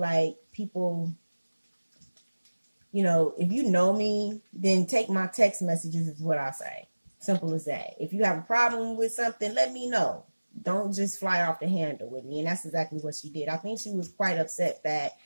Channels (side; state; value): both; inverted; correlation -1.00